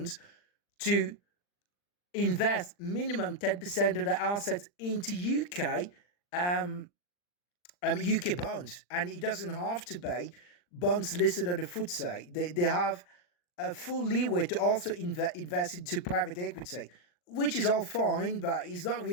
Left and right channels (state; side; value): late; right; 40 ms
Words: to invest minimum 10% of their assets into UK bonds, and it doesn't have to be bonds listed on the FTSE. They have a full leeway to also invest into private equity, which is all fine, but it's not